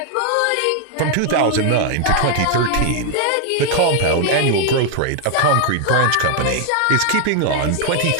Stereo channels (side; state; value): both; different; correlation 0.00